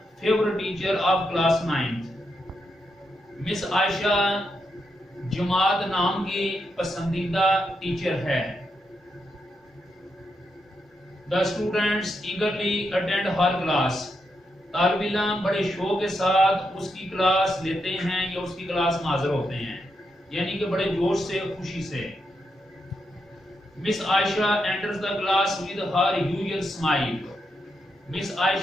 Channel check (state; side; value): normal; both; correlation 0.83